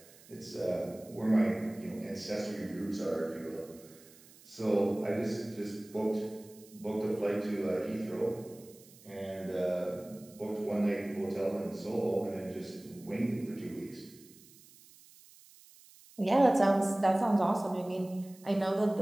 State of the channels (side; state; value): right; noise; hiss, 23 dB below the sound